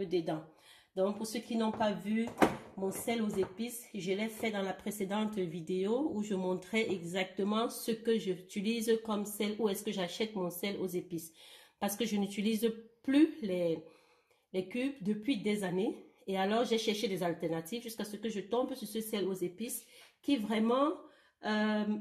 dedans. Donc, pour ceux qui n'ont pas vu mon sel aux épices, je l'ai fait dans la précédente vidéo où je montrais exactement ce que j'utilise comme sel, où est-ce que j'achète mon sel aux épices. Parce que je n'utilise plus les cubes depuis des années. Et alors, j'ai cherché des alternatives jusqu'à ce que je tombe sur ce sel aux épices qui vraiment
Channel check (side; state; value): both; identical; correlation 1.00